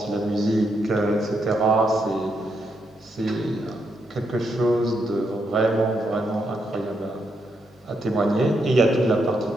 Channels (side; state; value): both; normal; correlation 0.80